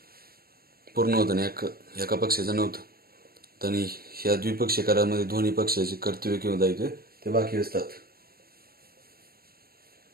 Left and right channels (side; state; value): left; late; 0.44 ms